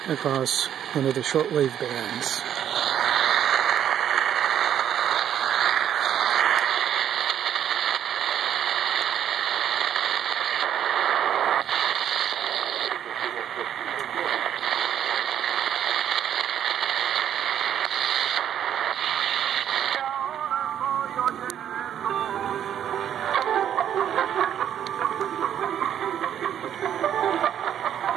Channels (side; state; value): left; quieter; 9.9 dB